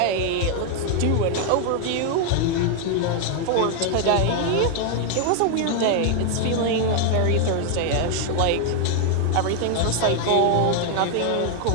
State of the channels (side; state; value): both; different; correlation 0.00